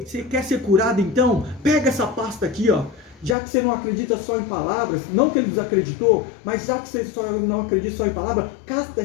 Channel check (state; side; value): drops out; right; at 3.4 s